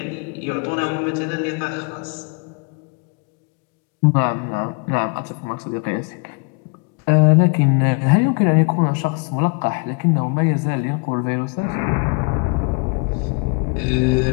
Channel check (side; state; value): right; quieter; 34.9 dB